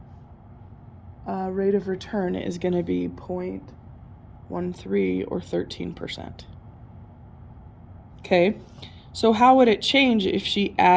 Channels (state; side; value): identical; both; correlation 1.00